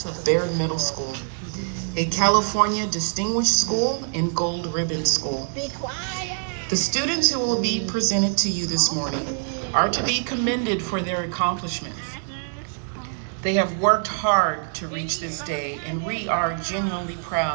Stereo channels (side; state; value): left; silent; 62 dB below the other